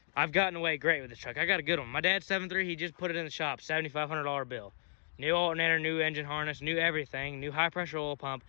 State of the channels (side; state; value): right; silent; 55 dB below the other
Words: I've gotten away great with this truck. I got a good one. My dad's 7.3, he just put it in the shop, $7,500 bill. New alternator, new engine harness, new everything, new high pressure oil pump.